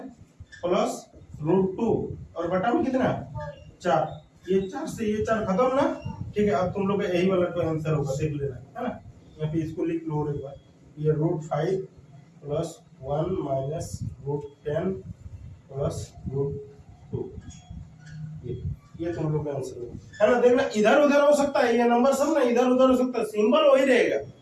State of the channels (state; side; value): identical; both; correlation 1.00